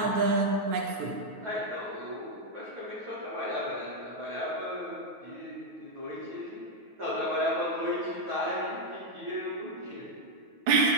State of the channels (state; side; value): late; left; 9.3 ms